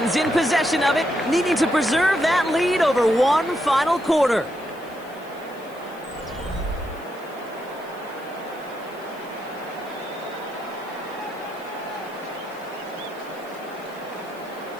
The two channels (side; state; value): left; noise; hiss, 25 dB below the sound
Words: in possession of it, needing to preserve that lead over 1 final quarter.